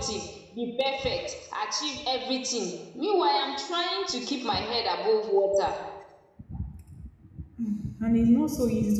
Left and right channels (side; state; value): both; identical; correlation 1.00